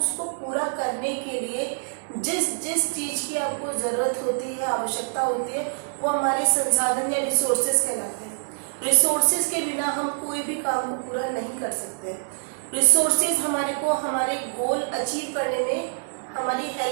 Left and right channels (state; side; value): silent; left; 61 dB below the other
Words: पूरा करने के लिए जिस चीज़ की आपको ज़रूरत होती है, आवश्यकता होती है, वो हमारे संसाधन या रिसोर्सेज कहलाते हैं। रिसोर्सेज के बिना हम कोई भी काम को पूरा नहीं कर सकते। रिसोर्सेज हमारे को हमारे गोल अचीव करने में हमारी